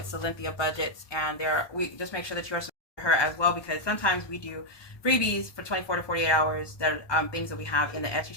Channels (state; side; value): late; right; 1.2 ms